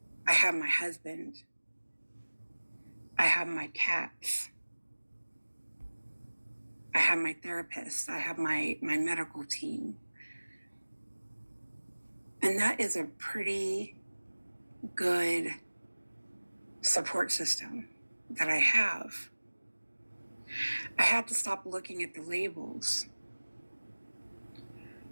I have my husband. I have my cats. I have my therapist. I have my medical team. And that is a pretty good support system that I have. I had to stop looking at the labels.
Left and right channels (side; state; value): both; inverted; correlation -1.00